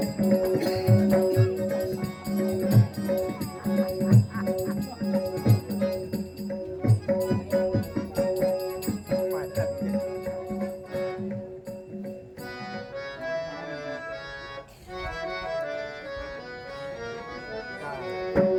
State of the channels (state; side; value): identical; both; correlation 1.00